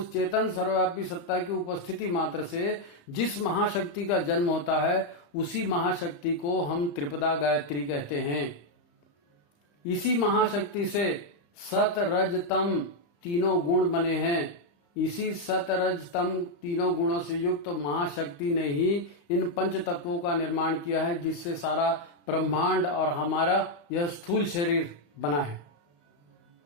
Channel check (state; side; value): late; right; 35 ms